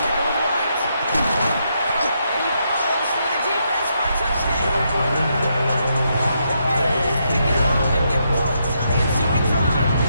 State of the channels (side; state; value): both; inverted; correlation -0.79